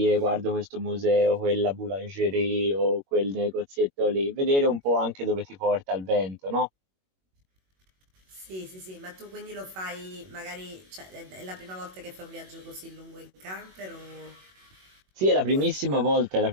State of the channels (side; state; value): left; late; 21 ms